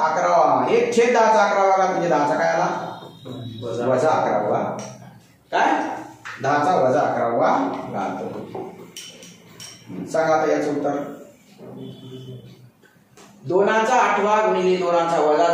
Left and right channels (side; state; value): both; identical; correlation 1.00